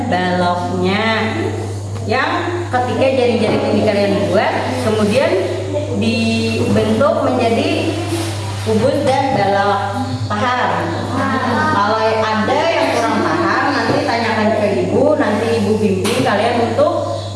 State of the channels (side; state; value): both; identical; correlation 1.00